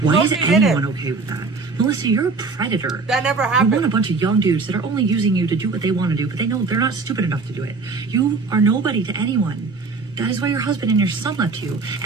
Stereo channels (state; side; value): quieter; left; 4.3 dB